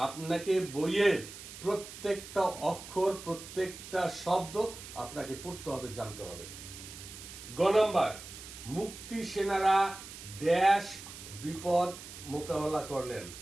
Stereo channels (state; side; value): noise; right; hiss, 13 dB below the sound